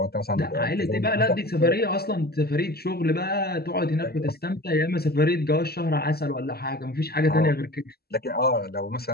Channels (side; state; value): right; late; 0.46 ms